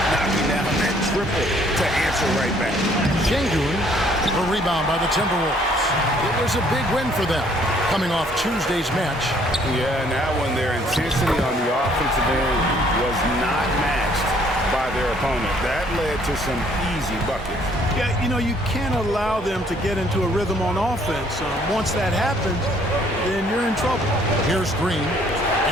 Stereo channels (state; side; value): normal; both; correlation 0.62